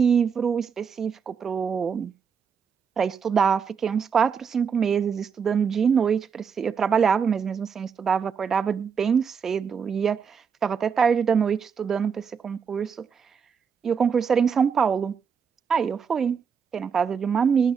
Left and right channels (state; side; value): quieter; left; 6.6 dB